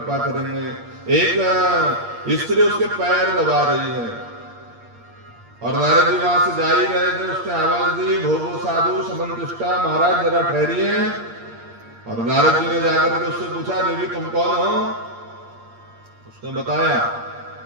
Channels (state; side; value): late; left; 8.6 ms